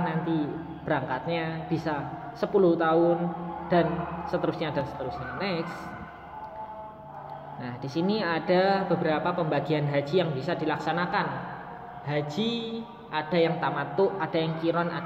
nanti berangkatnya bisa 10 tahun dan seterusnya dan seterusnya. Next. Nah, di sini ada beberapa pembagian haji yang bisa dilaksanakan. Haji ada yang tamattu, ada yang qiran,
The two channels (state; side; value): identical; both; correlation 1.00